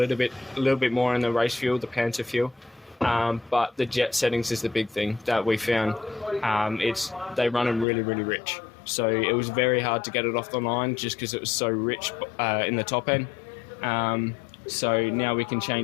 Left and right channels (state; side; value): drops out; right; at 7.9 s